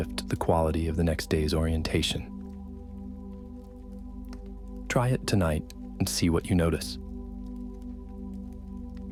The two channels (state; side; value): identical; both; correlation 1.00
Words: the quality of the next day's orientation. Try it tonight and see what you notice.